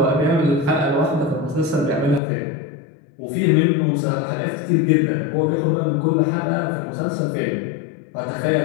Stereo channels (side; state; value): right; drops out; at 2.2 s